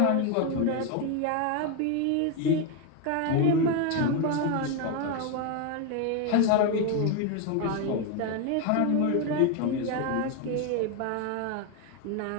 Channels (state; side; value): different; both; correlation 0.02